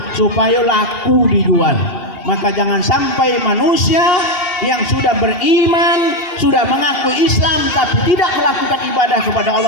supaya laku dijual. Maka jangan sampai manusia yang sudah beriman, sudah mengaku Islam tapi tidak melakukan ibadah kepada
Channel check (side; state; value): right; late; 2.7 ms